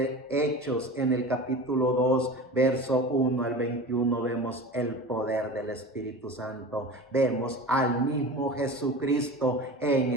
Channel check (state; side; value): normal; both; correlation 0.33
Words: Hechos, en el capítulo 2, verso 1 al 21, vemos el poder del Espíritu Santo. Vemos al mismo Jesucristo en